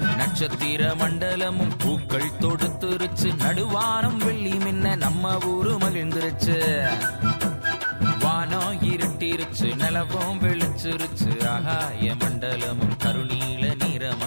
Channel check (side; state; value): both; inverted; correlation -1.00